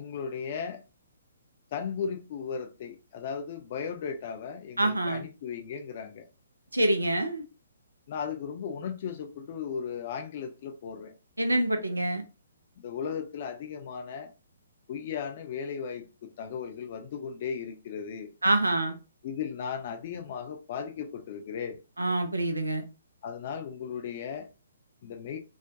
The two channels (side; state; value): both; inverted; correlation -0.75